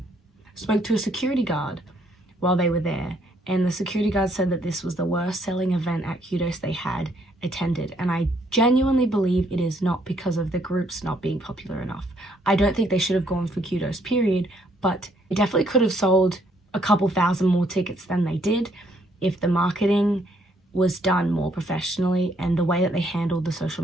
spoke to a security guard while they were there, and the security guard said that this was the worst selling event at Kudos they had attended, and I genuinely believe it is not because of the groups not being popular enough. I don't think they should have gone for Kudos, period, but they definitely could have sold a couple thousand more tickets than they did if the marketing was done more professionally and the way that they handled the social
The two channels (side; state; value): both; normal; correlation 0.69